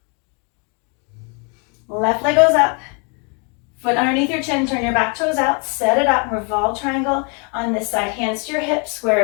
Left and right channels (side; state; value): right; quieter; 35.9 dB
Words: Left leg goes up. Foot underneath your chin. Turn your back toes out. Set it up. Revolve triangle on this side. Hands to your hips. Square